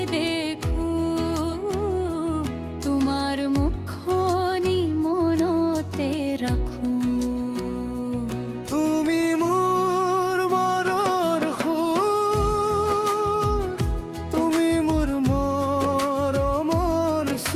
দেখো তোমাৰ মুখনি মনতে ৰাখো তুমি মোৰ মনৰ সুৰ তুমি মোৰ মৰমৰ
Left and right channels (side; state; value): both; identical; correlation 1.00